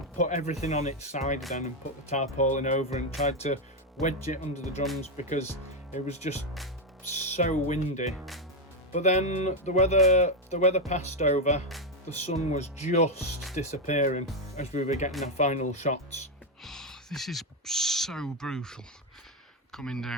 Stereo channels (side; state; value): both; normal; correlation 0.05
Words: put everything on its side then, and put the tarpaulin over and tried to wedge it under the drums because it was just so windy. But then the weather passed over. The sun was just disappearing as we were getting our final shots. This is so brutal coming